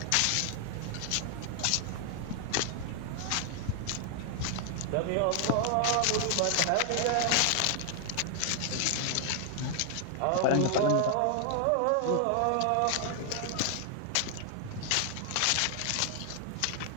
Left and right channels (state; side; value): different; both; correlation 0.00